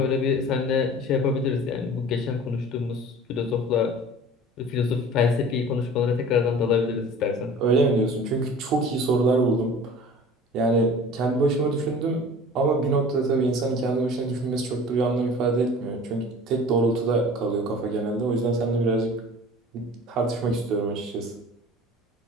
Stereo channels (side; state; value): both; normal; correlation 0.43